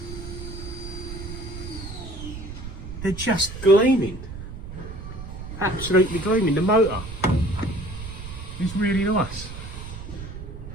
They're just gleaming. Absolutely gleaming. The motor is really nice.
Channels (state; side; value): noise; right; rumble, 10 dB below the sound